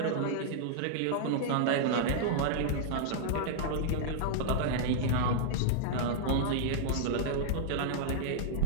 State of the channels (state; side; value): different; both; correlation -0.02